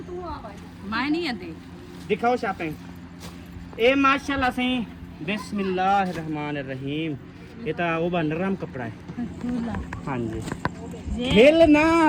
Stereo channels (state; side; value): identical; both; correlation 1.00